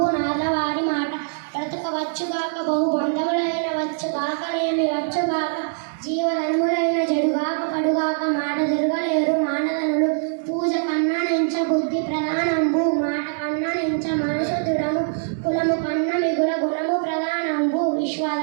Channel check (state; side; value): silent; left; digital silence